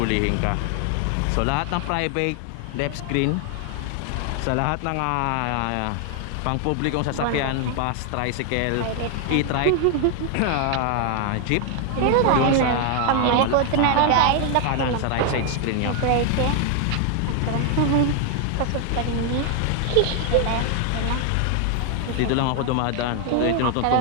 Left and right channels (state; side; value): different; both; correlation 0.00